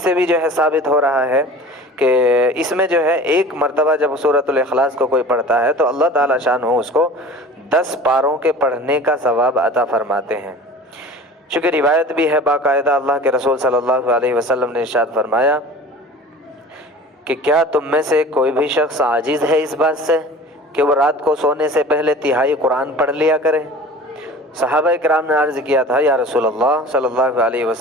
بھی جو ہے ثابت ہو رہا ہے کہ اس میں جو ہے ایک مرتبہ جب سورۃ الاخلاص کو کوئی پڑھتا ہے تو اللہ تعالیٰ شان ہو اس کو 10 پاروں کے پڑھنے کا ثواب عطا فرماتے ہیں۔ چونکہ روایت بھی ہے باقاعدہ، اللہ کے رسول صلی اللہ علیہ وسلم نے ارشاد فرمایا کہ کیا تم میں سے کوئی بھی شخص عاجز ہے اس بات سے کہ وہ رات کو سونے سے پہلے تہائی قرآن پڑھ لیا کرے؟ صحابہ کرام نے عرض کیا تھا، یا رسول اللہ صلی اللہ علیہ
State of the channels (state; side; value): normal; both; correlation 0.40